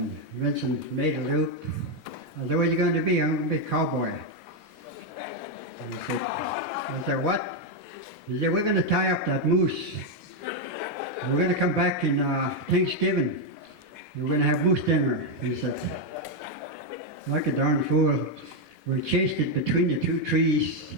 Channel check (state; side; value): normal; both; correlation 0.03